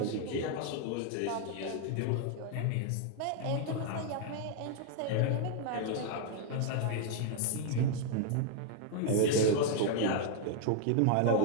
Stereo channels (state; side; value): different; both; correlation 0.00